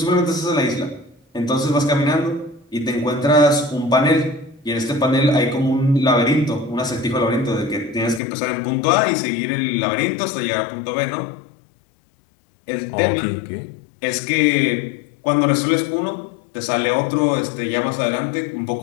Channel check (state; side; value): drops out; right; at 8.2 s